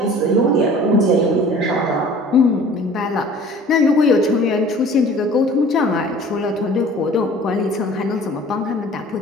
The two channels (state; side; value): normal; both; correlation 0.47